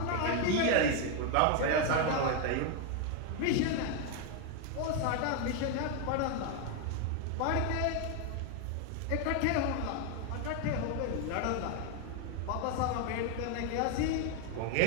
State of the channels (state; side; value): different; both; correlation 0.01